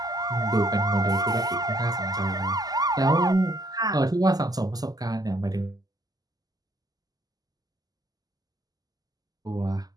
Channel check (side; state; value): left; late; 0.18 ms